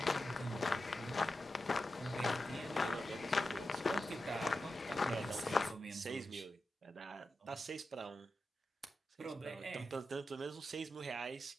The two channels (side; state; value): both; normal; correlation 0.90